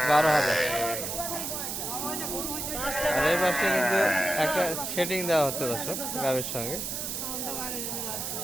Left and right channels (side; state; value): right; noise; hiss, 4 dB below the sound